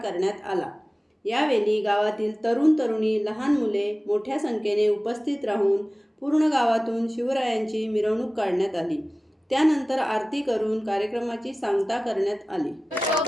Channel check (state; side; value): normal; both; correlation 0.97